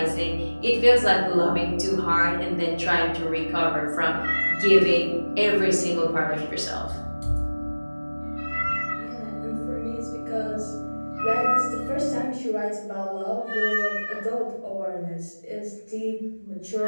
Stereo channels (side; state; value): both; inverted; correlation -1.00